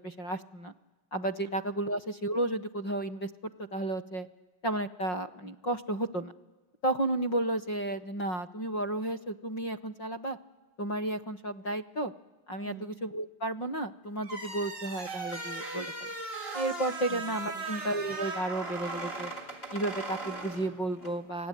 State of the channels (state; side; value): late; right; 5.5 ms